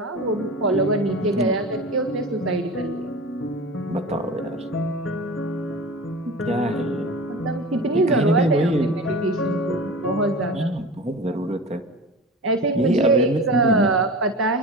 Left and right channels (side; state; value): both; normal; correlation 0.33